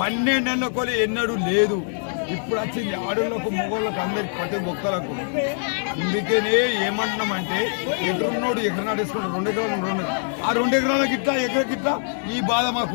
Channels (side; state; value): right; silent; digital silence